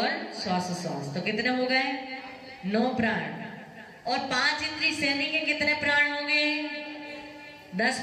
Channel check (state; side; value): identical; both; correlation 1.00